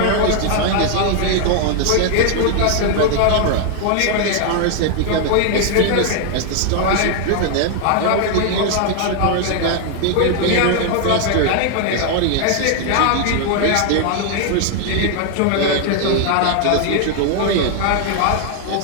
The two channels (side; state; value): both; different; correlation 0.00